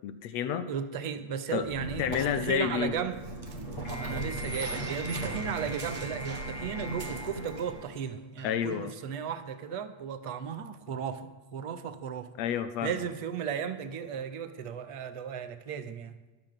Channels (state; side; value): late; right; 8.4 ms